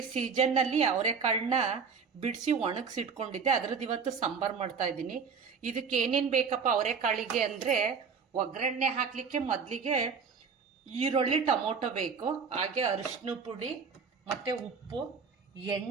ಸೀಸನ್ನಲ್ಲಿ ಅವರೆಕಾಳನ್ನ ಬಿಡಿಸಿ ಒಣಗಿಸಿಟ್ಕೊಂಡಿದ್ದೆ, ಅದರದ್ದು ಇವತ್ತು ಸಾಂಬಾರು ಮಾಡ್ತಾ ಇದ್ದೀನಿ. ಇದಕ್ಕೆ ಏನೇನು ಬೇಕಪ್ಪ ಅವರೆಕಾಳಿಗೆ ಅಂದರೆ, ಒಗ್ಗರಣೆ ಹಾಕಲಿಕ್ಕೆ ಮೊದಲಿಗೆ ಈರುಳ್ಳಿ, ಟೊಮೊಟೊ ಬೇಕು, ಹಾಗೆ ಅರಿಶಿನ ಪುಡಿ ಮತ್ತು ಉಪ್ಪು,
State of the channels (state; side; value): quieter; left; 5.7 dB